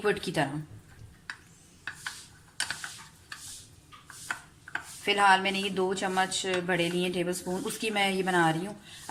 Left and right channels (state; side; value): identical; both; correlation 1.00